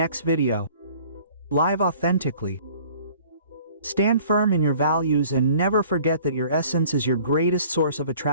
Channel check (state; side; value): inverted; both; correlation -0.52